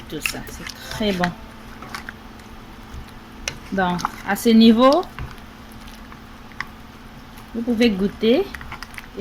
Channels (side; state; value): both; identical; correlation 1.00